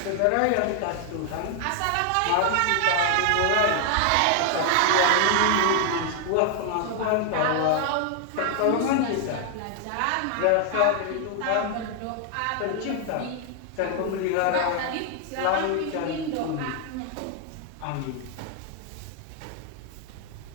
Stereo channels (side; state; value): both; different; correlation 0.00